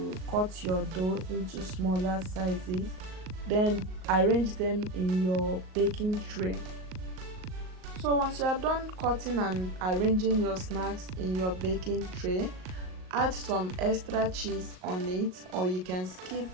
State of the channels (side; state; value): left; late; 38 ms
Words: cut your dough into smaller sizes. Then arrange them in your baking tray. So once you are done cutting and arranging your snacks in your baking tray, add some extra cheese on it, or you can skip